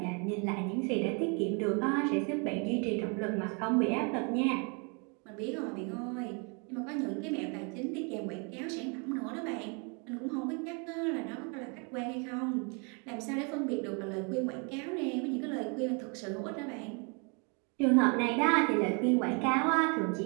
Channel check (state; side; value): quieter; left; 34.9 dB